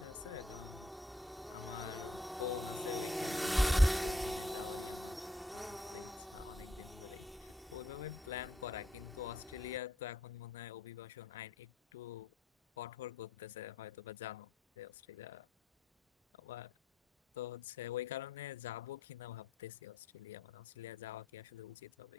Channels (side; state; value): both; normal; correlation 0.74